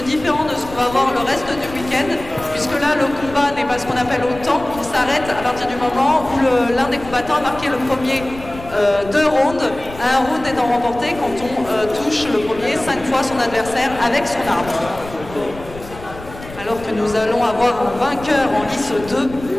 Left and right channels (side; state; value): left; noise; rumble, 15 dB below the sound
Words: différent de ce qu'on va voir le reste du week-end, puisque là le combat n'est pas ce qu'on appelle au temps, il s'arrête à partir du moment où l'un des combattants a marqué le premier 2 rounds, un round étant remporté quand on touche le premier 5 fois son adversaire avec son arme. Alors que nous allons avoir un vainqueur en lice 2.